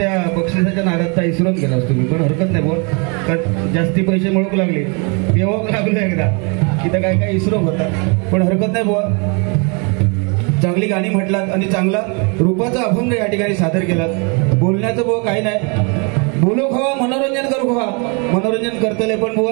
बक्षिसाच्या नादात इसरून गेलास तुम्ही पण हरकत नाही बुवा कारण जास्ती पैसे मिळवू लागले पेवाक लागलो एकदा तिथं काय काय इसरो होता पण हरकत नाही बुवा चांगली गाणी म्हटलात आणि चांगला रूपाचा अभंग या ठिकाणी सादर केलात बोलण्याचं बुवा काही नाही बोलो खवा मनोरंजन करू खवा मनोरंजन करतले पण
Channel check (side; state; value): left; quieter; 33.8 dB